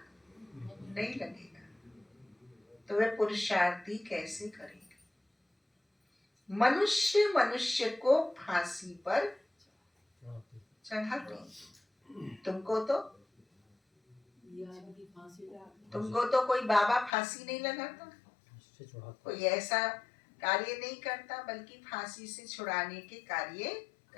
नहीं लगेगा तो वे पुरुषार्थी कैसे करेंगे। मनुष्य मनुष्य को फांसी पर चढ़ाते। तुमको तो कोई बाबा फांसी नहीं लगाता, कोई ऐसा कार्य नहीं करता, बल्कि फांसी से छुड़ाने के कार्य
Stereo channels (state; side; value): drops out; right; at 17.1 s